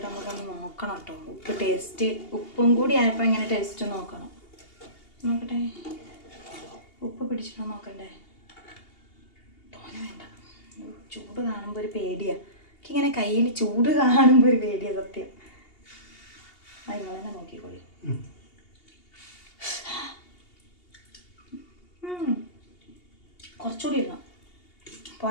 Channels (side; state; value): right; late; 2.8 ms